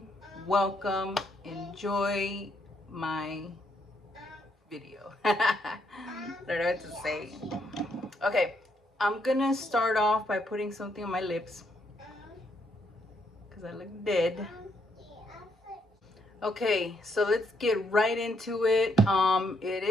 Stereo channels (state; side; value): normal; both; correlation 0.74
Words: welcome. Enjoy my video. I don't know what to say. Okay, I'm gonna start off by putting something on my lips because I look dead. Okay, so let's get right into it. It